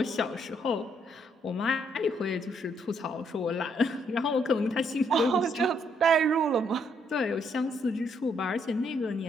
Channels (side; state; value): both; normal; correlation 0.72